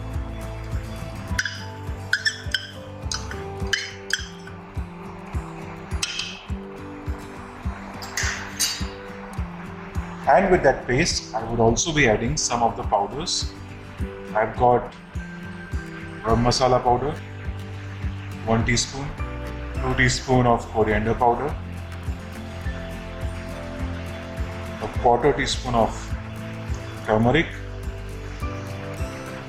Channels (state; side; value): identical; both; correlation 1.00